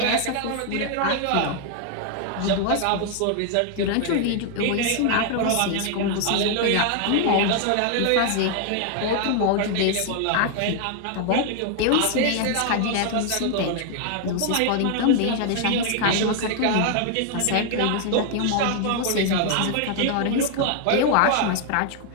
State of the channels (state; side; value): different; both; correlation 0.00